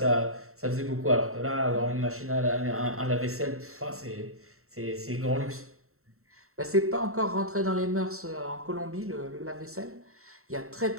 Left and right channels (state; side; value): late; left; 0.63 ms